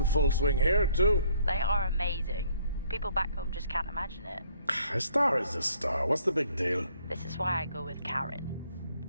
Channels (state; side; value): inverted; both; correlation -0.64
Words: full swing here, too. They are amazing. People back home just can't imagine it. A star is a star. What's the big deal? This is why I go with Karen.